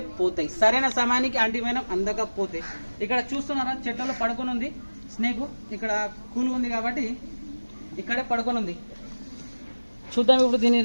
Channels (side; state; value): both; inverted; correlation -1.00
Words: పోతాయి, సరైన సమయానికి యాంటీవెనం అందకపోతే. ఇక్కడ చూస్తున్నారా, చెట్లలో పడుకొని ఉంది స్నేక్. ఇక్కడ కూల్ ఉంది కాబట్టి ఇక్కడే పడుకొని ఉంది. చూద్దాం, ఇప్పుడు దీన్ని